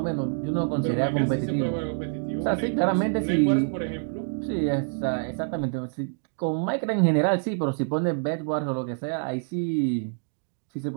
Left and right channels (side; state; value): left; silent; digital silence